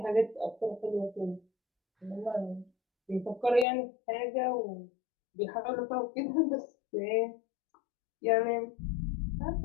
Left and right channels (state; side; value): drops out; right; at 3.7 s